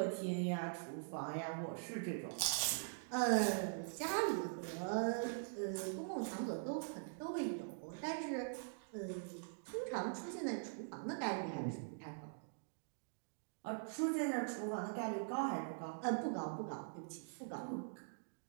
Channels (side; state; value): left; silent; digital silence